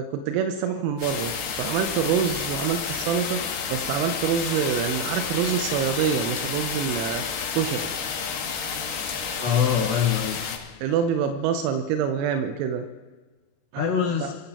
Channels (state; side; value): late; left; 36 ms